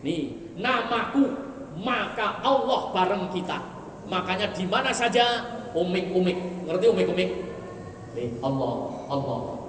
nih namaku, maka Allah bareng kita. Makanya di mana saja umik-umik, ngerti umik-umik? Allah, Allah,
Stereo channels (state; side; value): identical; both; correlation 1.00